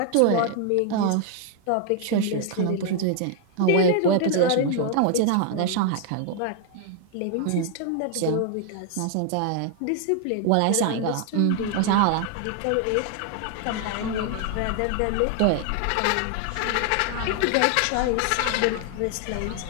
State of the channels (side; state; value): both; different; correlation 0.00